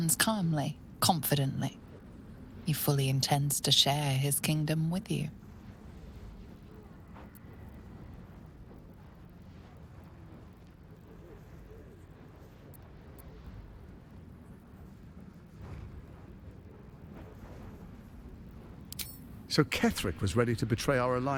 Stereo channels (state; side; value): identical; both; correlation 1.00